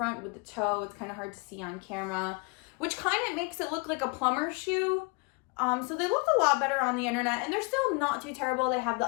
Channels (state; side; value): quieter; right; 29.1 dB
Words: with the toe. It's kind of hard to see on camera, which kind of makes it look like a plumber shoe. So they look a lot better on the internet, and they're still not too terrible. They have the